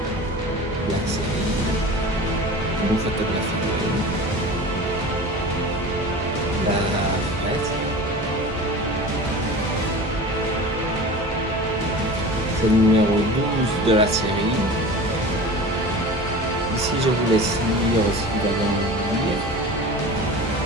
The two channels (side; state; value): both; normal; correlation 0.35